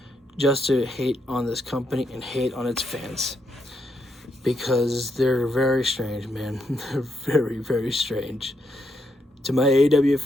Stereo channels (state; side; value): normal; both; correlation 0.79